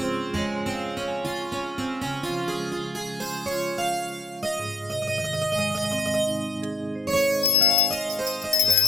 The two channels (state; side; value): normal; both; correlation 0.67